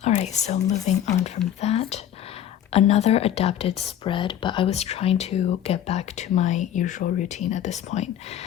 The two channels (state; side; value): quieter; right; 10.5 dB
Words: All right, so moving on from that, another adapted spread, but I was trying to get back to my usual routine at this point.